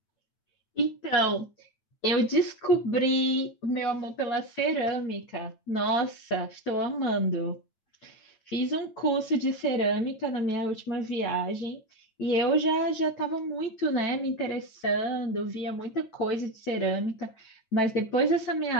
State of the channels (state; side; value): late; right; 9.1 ms